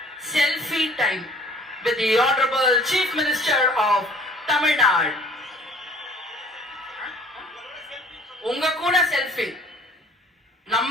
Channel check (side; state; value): both; normal; correlation 0.52